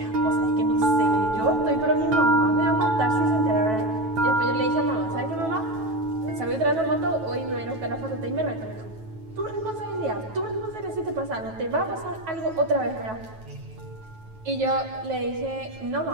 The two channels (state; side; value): late; left; 9.2 ms